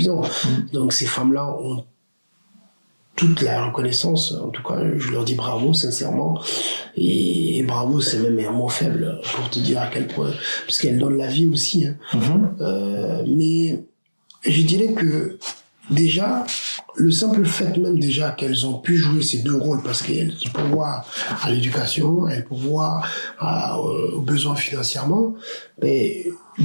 Donc ces femmes-là ont toute la reconnaissance. En tout cas, je leur dis bravo, sincèrement. Et bravo, c'est même un mot faible pour te dire à quel point. Parce qu'elles donnent la vie aussi. Hein. Mais je dirais que déjà, le simple fait même déjà qu'elles ont pu jouer ces deux rôles, parce qu'elles pourvoient à l'éducation, elles pourvoient aux besoins financièrement, mais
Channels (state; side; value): inverted; both; correlation -1.00